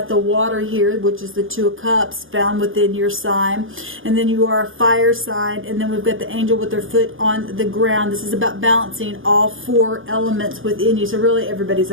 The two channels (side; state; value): left; late; 0.59 ms